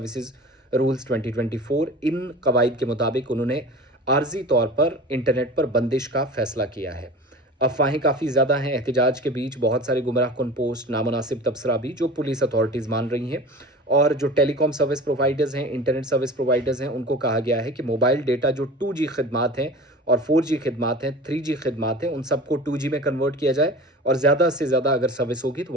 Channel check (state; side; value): normal; both; correlation 0.36